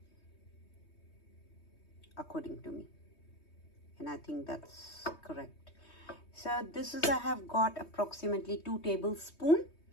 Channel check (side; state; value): right; late; 3.2 ms